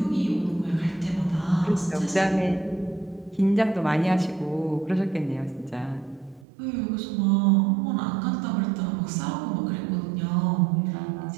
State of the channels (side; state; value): left; drops out; at 6.5 s